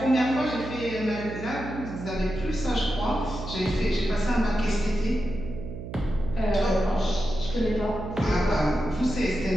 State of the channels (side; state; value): right; noise; hum, 9 dB below the sound